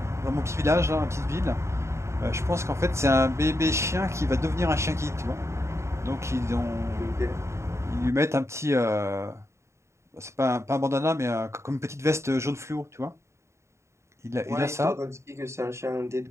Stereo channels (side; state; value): left; late; 0.14 ms